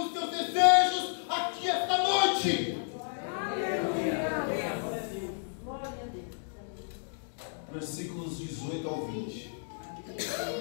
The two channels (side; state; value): right; silent; digital silence